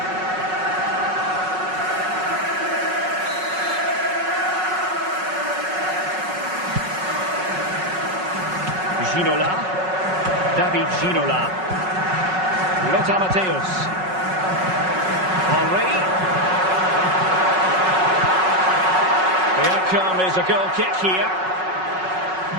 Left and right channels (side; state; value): left; late; 5.4 ms